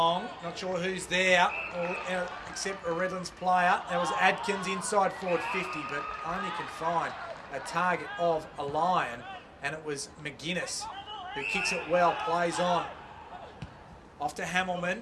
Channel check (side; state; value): both; identical; correlation 1.00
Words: Not sure who's there, except a Redlands player. There was Adkins inside forward 50, but only can find a target of a Lion, and it was McGuinness who kicks it well, plays on. Off to Hamilman.